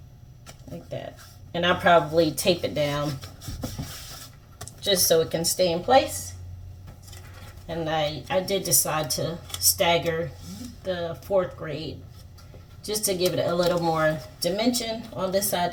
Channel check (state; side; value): identical; both; correlation 1.00